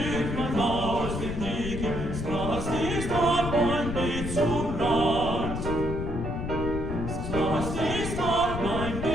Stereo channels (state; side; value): noise; left; rumble, 4 dB below the sound